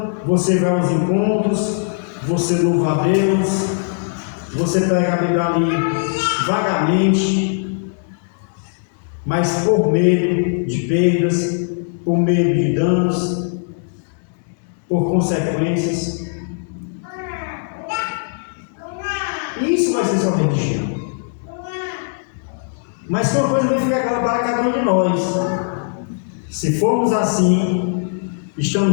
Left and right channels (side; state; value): right; silent; 66 dB below the other